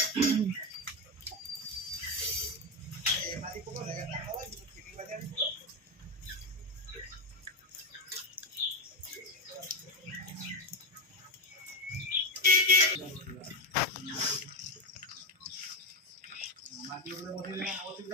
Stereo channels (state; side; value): normal; both; correlation 0.11